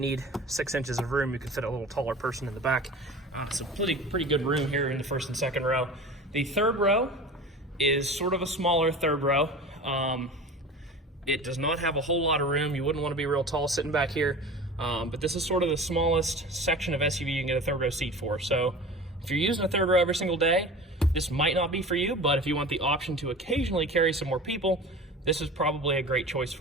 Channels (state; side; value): normal; both; correlation 0.36